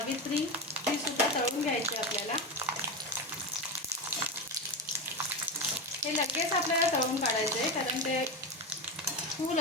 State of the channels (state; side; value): normal; both; correlation 0.17